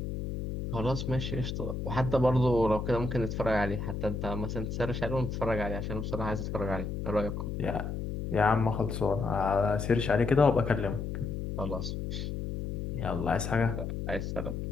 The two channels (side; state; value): left; noise; hum, 4 dB below the sound